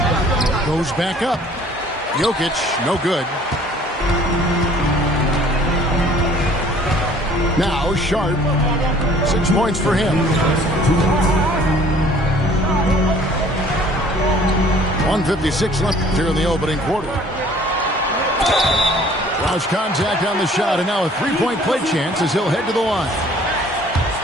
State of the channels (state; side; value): normal; both; correlation 0.54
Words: Goes back up. Jokic, no good. Now Sharp. 6 points for him. 1:56 left here in the opening quarter. Roush contact on the shot, and now a 3-point play chance as he'll head to the line.